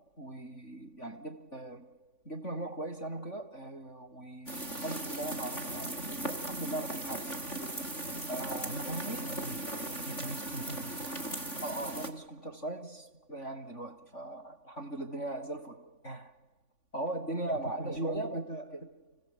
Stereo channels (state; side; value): late; right; 3.5 ms